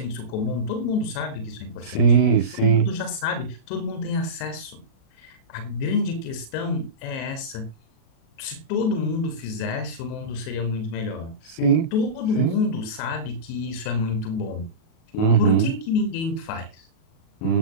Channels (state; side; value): late; right; 37 ms